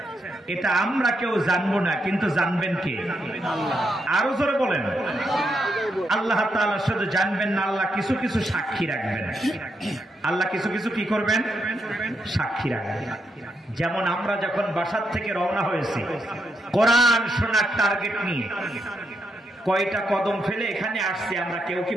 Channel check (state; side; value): normal; both; correlation 0.80